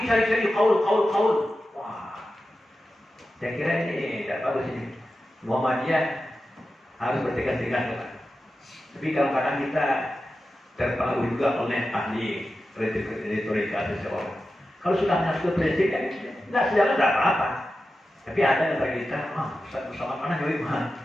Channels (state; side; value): normal; both; correlation 0.92